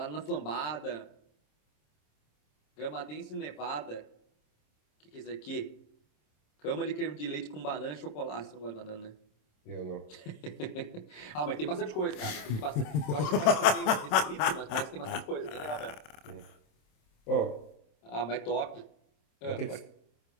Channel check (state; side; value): late; right; 27 ms